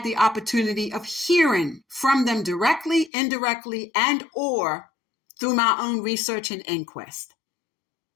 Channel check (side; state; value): right; drops out; at 3.1 s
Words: the opportunity of hearing from them directly, indirectly, and or through my own research and inquest.